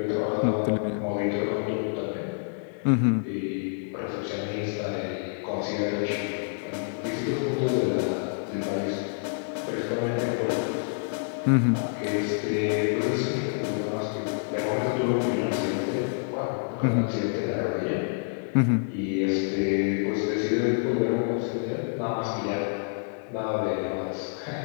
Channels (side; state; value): right; silent; digital silence